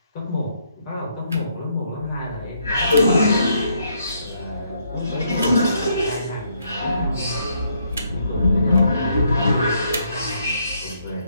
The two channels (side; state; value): both; inverted; correlation -0.73